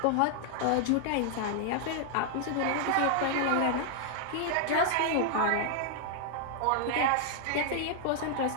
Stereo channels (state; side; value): different; both; correlation -0.01